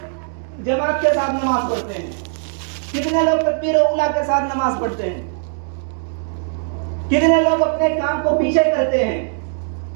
جماعت کے ساتھ نماز پڑھتے ہیں, کتنے لوگ تکبیر اولیٰ کے ساتھ نماز پڑھتے ہیں, کتنے لوگ اپنے کام کو پیچھے کرتے ہیں,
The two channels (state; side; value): silent; left; digital silence